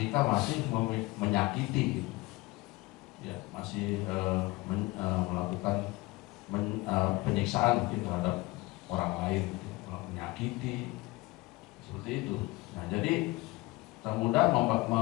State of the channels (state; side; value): quieter; right; 22.1 dB